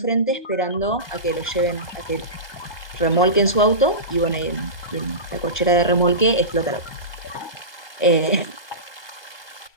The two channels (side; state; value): right; late; 1.2 ms